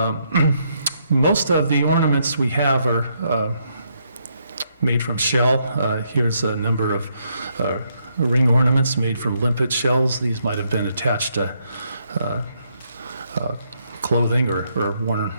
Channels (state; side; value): inverted; both; correlation -0.75